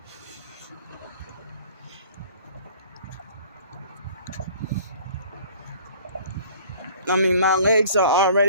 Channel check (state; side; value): inverted; both; correlation -0.50